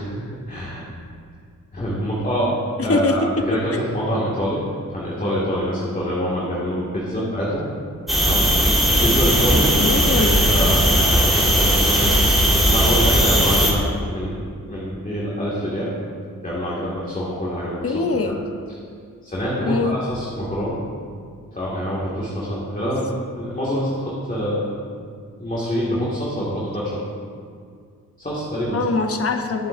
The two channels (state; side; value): normal; both; correlation 0.55